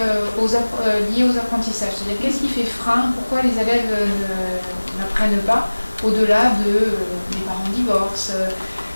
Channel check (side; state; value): both; inverted; correlation -1.00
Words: aux apprentissages. C'est-à-dire qu'est-ce qui fait frein, pourquoi les élèves n'apprennent pas au-delà de les parents divorcent,